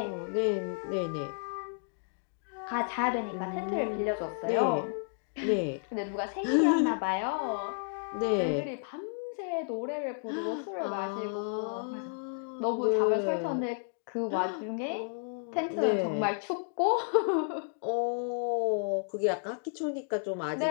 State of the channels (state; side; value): silent; right; digital silence